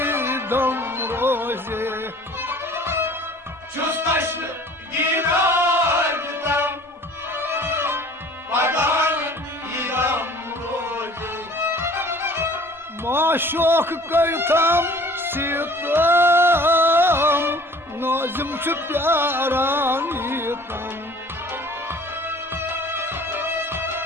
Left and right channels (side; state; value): both; normal; correlation 0.49